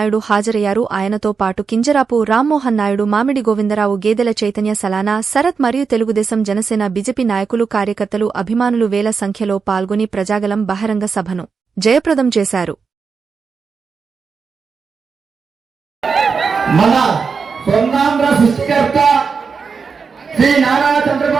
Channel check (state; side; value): quieter; left; 5.4 dB